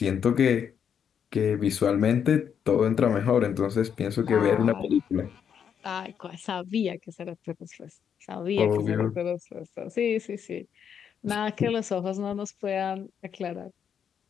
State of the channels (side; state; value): right; quieter; 7.9 dB